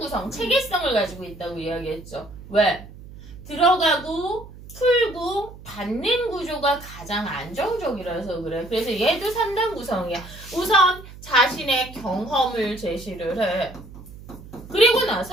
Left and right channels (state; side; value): noise; right; hum, 16 dB below the sound